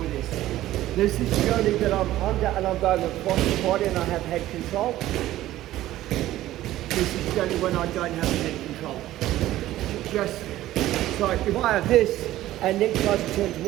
this. This is purely that I'm under and I'm going across the body and I have head control. This is only when I don't have head control. Just, so if I have this and Nick tries to turn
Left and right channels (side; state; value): left; quieter; 14.7 dB